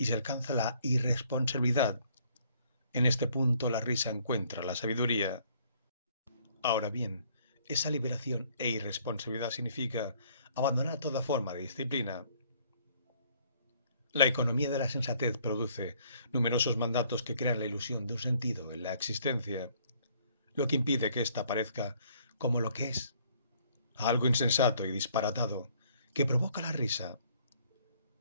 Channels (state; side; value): inverted; both; correlation -0.62